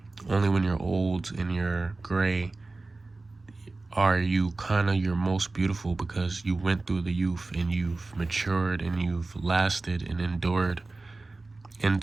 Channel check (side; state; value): left; quieter; 3.4 dB